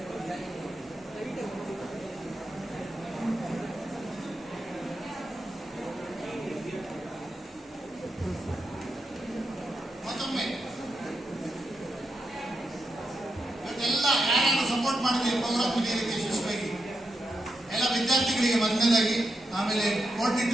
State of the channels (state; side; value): normal; both; correlation 0.86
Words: ಮತ್ತೊಮ್ಮೆ ಇವತ್ತೆಲ್ಲ ಯಾರ್ಯಾರು ಸಪೋರ್ಟ್ ಮಾಡಿದ್ರೆ ಪ್ರೋಗ್ರಾಮ್ ನಡೆಯಲಿಕ್ಕೆ ಯಶಸ್ವಿಯಾಗಿ ಎಲ್ಲ ವಿದ್ಯಾರ್ಥಿಗಳಿಗೆ ಮೊದಲನೇದಾಗಿ, ಆಮೇಲೆ